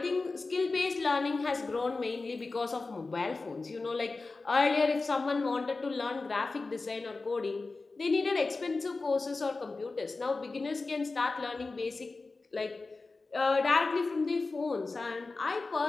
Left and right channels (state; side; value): quieter; right; 3.7 dB